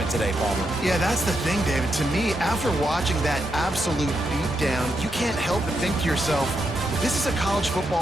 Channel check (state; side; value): normal; both; correlation 0.83